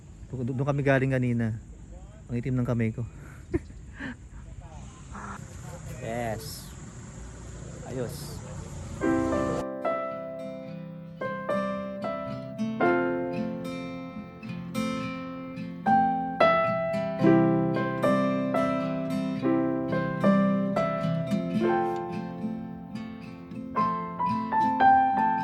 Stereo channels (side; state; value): both; identical; correlation 1.00